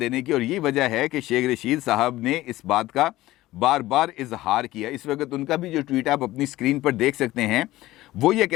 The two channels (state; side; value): quieter; right; 16.7 dB